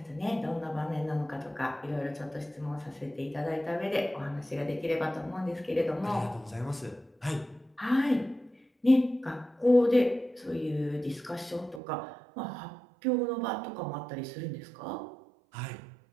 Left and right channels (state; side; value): drops out; left; at 11.8 s